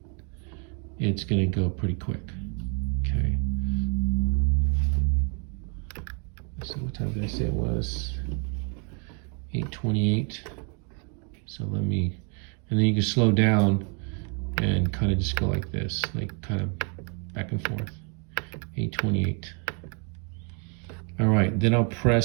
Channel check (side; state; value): left; quieter; 38.3 dB